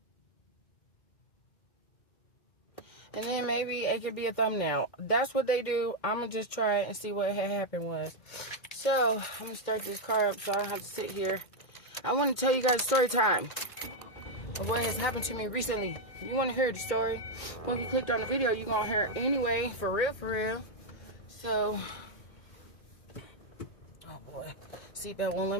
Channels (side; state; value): right; late; 2.1 ms